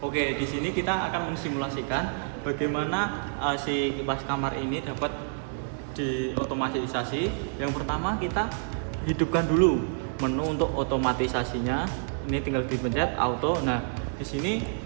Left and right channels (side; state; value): left; silent; 59 dB below the other